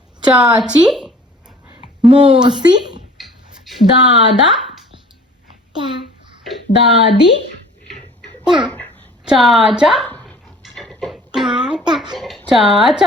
चाची मौसी दादा दादी चाचा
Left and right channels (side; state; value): both; normal; correlation 0.49